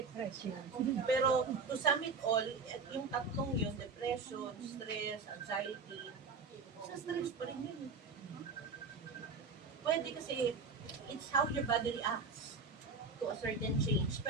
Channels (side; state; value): left; quieter; 4.5 dB